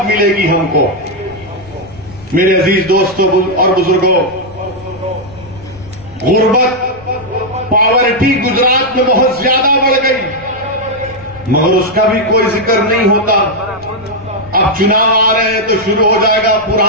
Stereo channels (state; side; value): noise; left; rumble, 22 dB below the sound